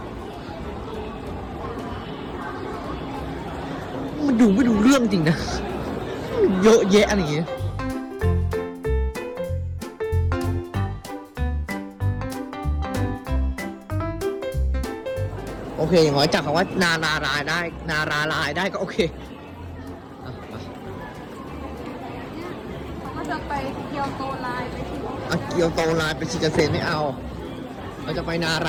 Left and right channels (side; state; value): both; identical; correlation 1.00